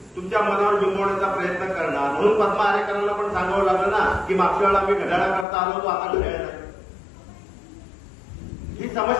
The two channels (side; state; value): right; drops out; at 5.5 s